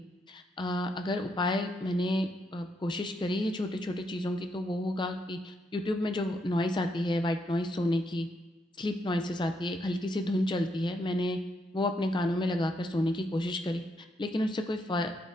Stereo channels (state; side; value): normal; both; correlation 0.78